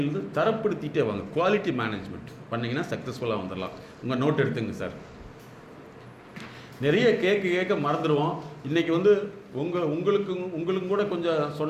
தரப்படுத்திகிட்டே வாங்க. குவாலிட்டி மேனேஜ்மெண்ட் பண்ணிங்கன்னா சக்ஸஸ்ஃபுல்லாக வந்துடலாம். உங்கள் நோட் எடுத்துங்க சார். நிறைய கேட்க மறந்துடுவோம். இன்றைக்கி வந்து உங்களுக்கும் கூட கொஞ்சம்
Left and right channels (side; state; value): both; identical; correlation 1.00